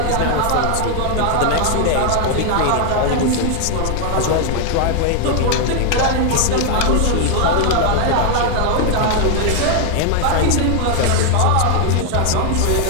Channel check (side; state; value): both; different; correlation 0.00